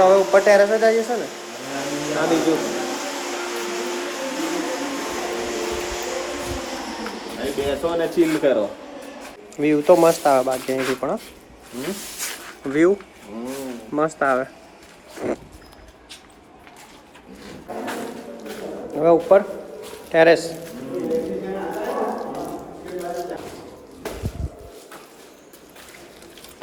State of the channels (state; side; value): identical; both; correlation 1.00